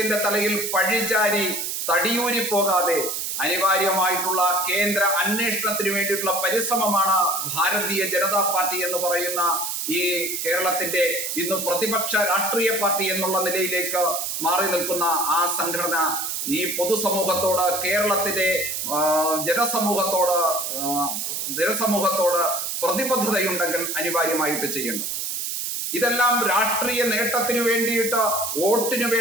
തലയിൽ പഴിചാരി തടിയൂരി പോകാതെ അനിവാര്യമായിട്ടുള്ള കേന്ദ്ര അന്വേഷണത്തിന് വേണ്ടിയിട്ടുള്ള പരിശ്രമമാണ് ഭാരതീയ ജനതാ പാർട്ടി എന്ന് പറയുന്ന ഈ കേരളത്തിന്റെ ഇന്ന് പ്രതിപക്ഷ രാഷ്ട്രീയ പാർട്ടി എന്നുള്ള നിലയിലേക്ക് മാറി നിൽക്കുന്ന ആ സംഘടന ഈ പൊതുസമൂഹത്തോട്, കേരളത്തിന്റെ ജനസമൂഹത്തോട് പ്രതിബദ്ധതയുണ്ടെങ്കിൽ അനിവാര്യമായിട്ട് ചെയ്യേണ്ടത്. ഇതെല്ലാം രാഷ്ട്രീയ നേട്ടത്തിന് വേണ്ടിയിട്ട്, വോട്ടിന്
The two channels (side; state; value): right; noise; hiss, 3 dB below the sound